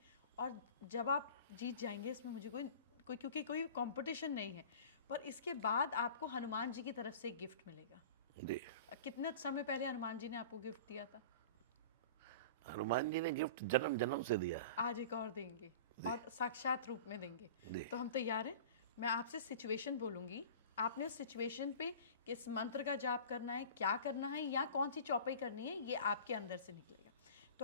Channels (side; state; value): both; inverted; correlation -0.38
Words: और जब आप जीत जाएंगे इसमें मुझे कोई क्योंकि कोई कंपटीशन नहीं है, पर इसके बाद आपको हनुमान जी की तरफ से एक गिफ्ट मिलेगा। जी। कितने समय पहले हनुमान जी ने आपको गिफ्ट दिया था? हनुमान जी ने गिफ्ट जन्म जन्म से दिया है। आज एक और देंगे और साक्षात रूप में देंगे। जी। तो हम तैयार हैं। मैं आपसे सिचुएशन बोलूंगी, आपने उस सिचुएशन पे किस मंत्र का जाप करना है, क्या करना है, या कौन सी चौपाई करनी है, ये आपके अंदर से निकलेगा।